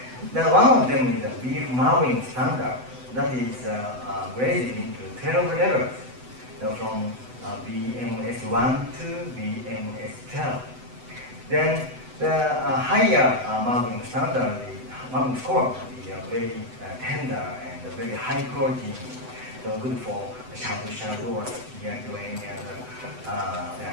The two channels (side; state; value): left; late; 7.9 ms